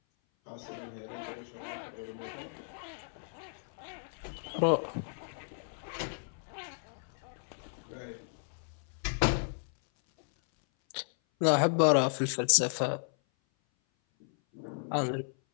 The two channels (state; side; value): silent; right; 55 dB below the other